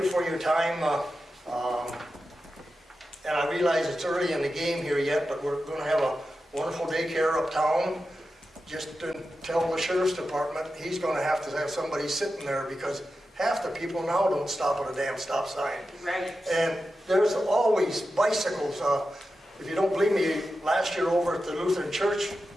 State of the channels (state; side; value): normal; both; correlation 0.91